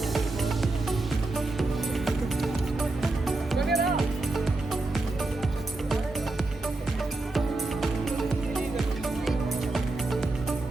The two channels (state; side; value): quieter; left; 3.0 dB